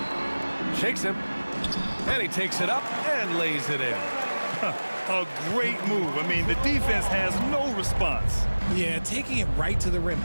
Shakes him. And he takes it up and lays it in. A great move. I mean, the defense has no response. Yeah, taking it right to the rim.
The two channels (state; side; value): inverted; both; correlation -1.00